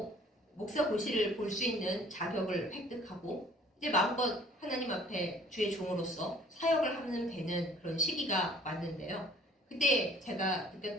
목사 고시를 볼 수 있는 자격을 획득하고 이제 마음껏 하나님 앞에 주의 종으로서 사역을 하면 되는 그런 시기가 왔는데요. 그때 제가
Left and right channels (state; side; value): normal; both; correlation 0.54